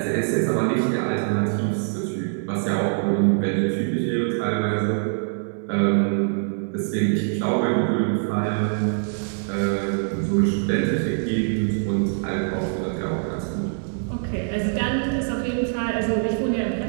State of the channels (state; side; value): silent; left; digital silence